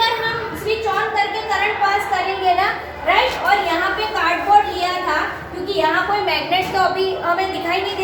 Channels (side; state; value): both; identical; correlation 1.00